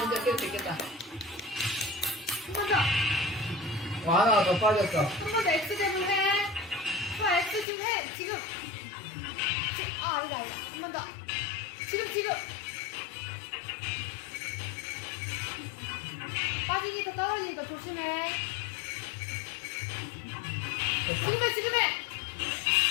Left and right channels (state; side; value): drops out; right; at 7.7 s